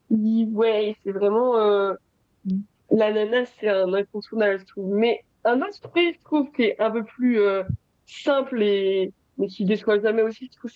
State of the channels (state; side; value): identical; both; correlation 1.00